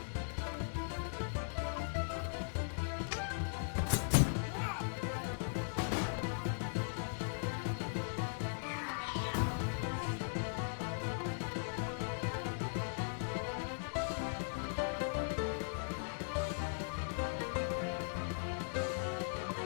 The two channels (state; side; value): silent; right; digital silence